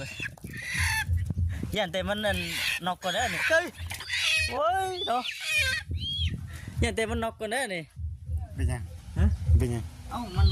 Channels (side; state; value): both; identical; correlation 1.00